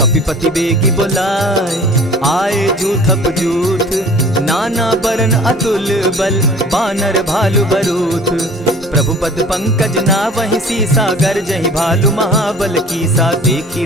बेगी बुलाए, आए जूथप जूथ। नाना बरन अतुल बल, बानर भालु बरूथ। प्रभु पद पंकज नावहि सीसा, गर्जहि भालु महाबल कीसा। देखी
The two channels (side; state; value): both; normal; correlation 0.47